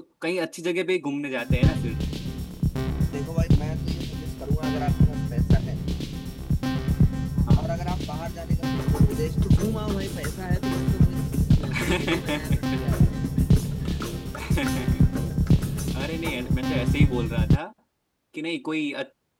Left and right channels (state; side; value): identical; both; correlation 1.00